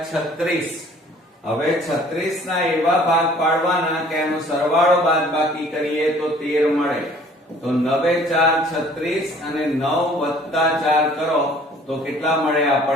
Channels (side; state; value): both; normal; correlation 0.54